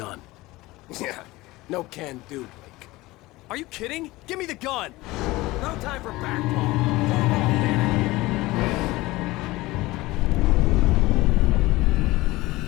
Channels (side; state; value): right; quieter; 19.8 dB